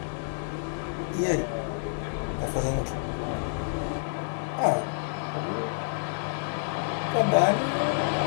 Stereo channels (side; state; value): right; silent; digital silence